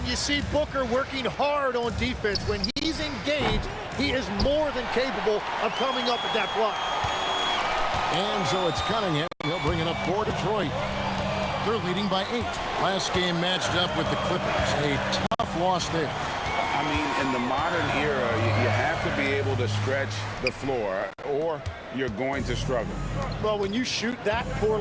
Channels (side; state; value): both; identical; correlation 1.00